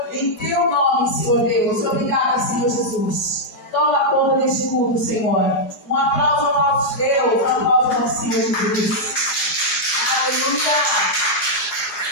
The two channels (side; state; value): right; late; 4.8 ms